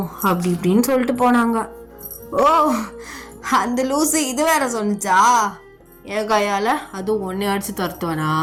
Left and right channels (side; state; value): both; identical; correlation 1.00